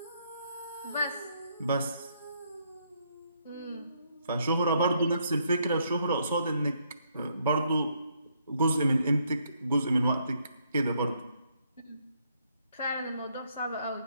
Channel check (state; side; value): inverted; both; correlation -0.73